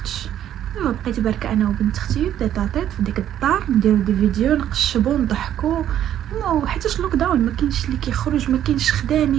دابا بقيت بركه انا وبنت اختي تيطاطيط في ديك الدار، نديرو دي فيديو، نقشبو، نضحكو، وحيتاش لوك داون ما كاينش اللي كيخرج، ما كاينش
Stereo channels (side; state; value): left; quieter; 11.0 dB